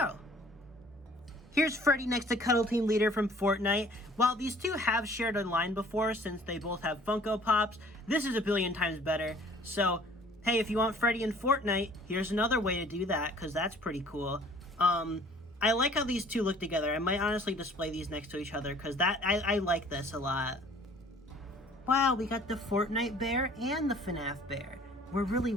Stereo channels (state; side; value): normal; both; correlation 0.53